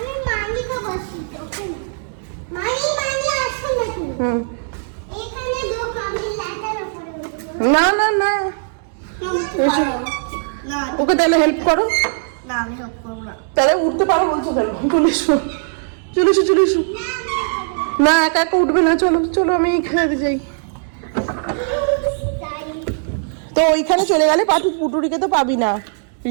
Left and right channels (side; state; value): left; silent; 64 dB below the other